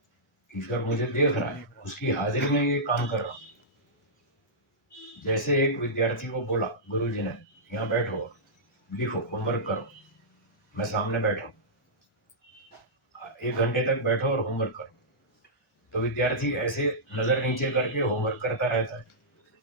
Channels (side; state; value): both; normal; correlation -0.15